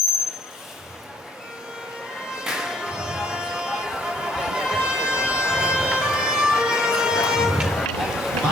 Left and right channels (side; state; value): both; normal; correlation 0.62